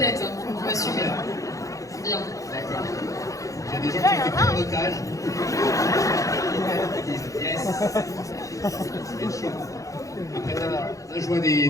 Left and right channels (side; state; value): right; late; 0.16 ms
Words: hein, faut assumer. C'est bien. D'accord. Il y a des gens qui ont été pris en otage. Ils disent yes. C'est chaud. Après là, je vois